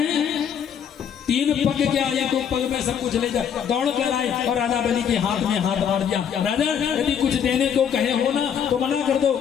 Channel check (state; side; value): quieter; right; 8.2 dB